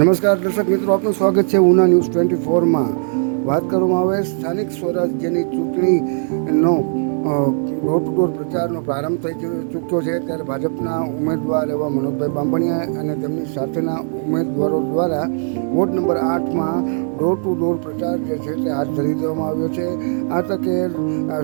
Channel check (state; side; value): silent; left; 57 dB below the other